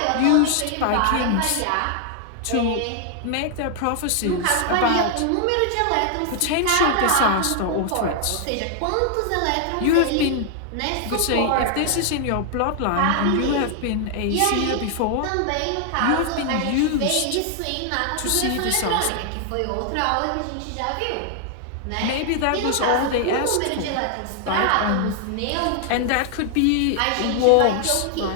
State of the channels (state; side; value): different; both; correlation 0.00